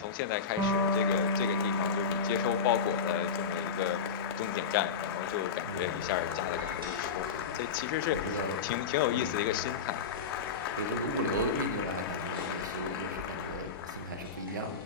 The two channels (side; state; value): right; quieter; 5.6 dB